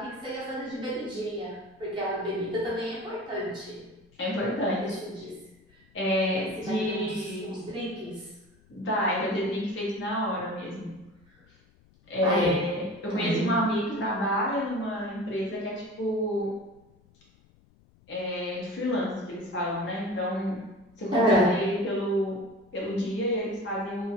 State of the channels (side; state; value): left; noise; rumble, 30 dB below the sound